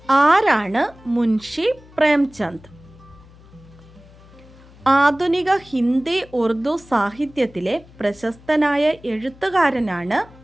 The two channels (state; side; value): noise; left; hum, 24 dB below the sound